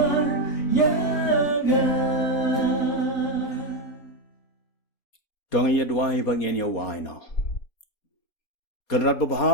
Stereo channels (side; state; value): right; late; 4.2 ms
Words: Dong ye dwai bangin ye wai no. Kenrat